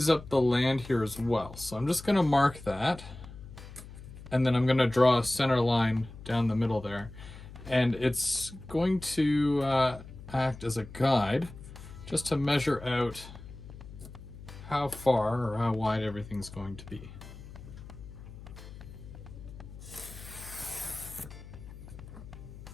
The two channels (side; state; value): left; noise; hum, 15 dB below the sound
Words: up the land here as well. So I'm just gonna mark that, and then I'm gonna draw a center line down the middle there. And it's going to act as a guide just to measure out how far or how wide everything's going to be.